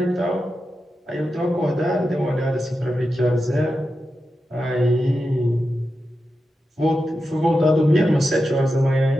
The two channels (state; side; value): normal; both; correlation 0.90